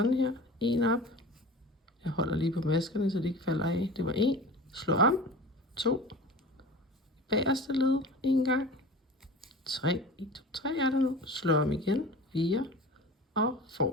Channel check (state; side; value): normal; both; correlation 0.36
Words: her. 1 op. Jeg holder lige på maskerne, så de ikke falder af. Det var 1. Slå om. 2. Bagerste led 1 gang. 3. 1, 2, 3 er der nu. Slå om igen. 4. Og